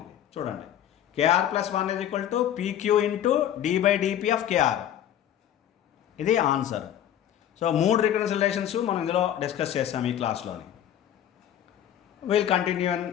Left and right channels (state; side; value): quieter; right; 10.7 dB